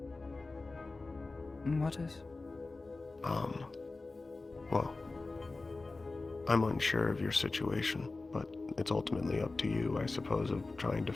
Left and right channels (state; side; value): quieter; right; 3.5 dB